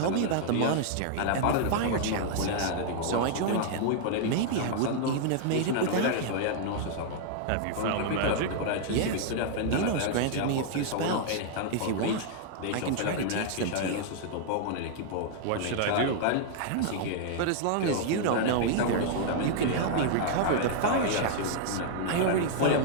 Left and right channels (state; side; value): different; both; correlation -0.01